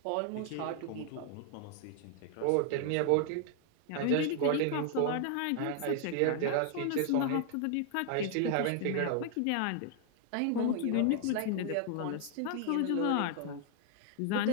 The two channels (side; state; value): both; different; correlation 0.00